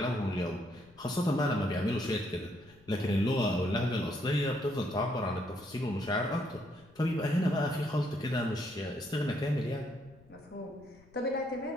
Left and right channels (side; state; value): left; noise; rumble, 26 dB below the sound